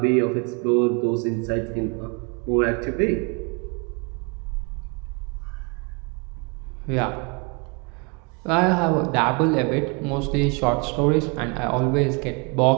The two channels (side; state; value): left; quieter; 31.7 dB